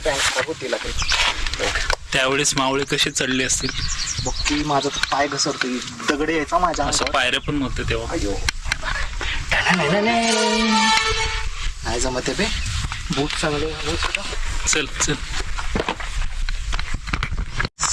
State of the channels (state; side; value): identical; both; correlation 1.00